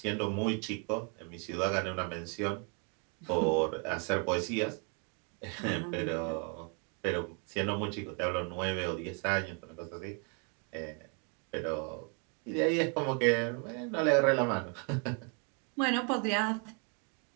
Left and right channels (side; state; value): left; quieter; 37.6 dB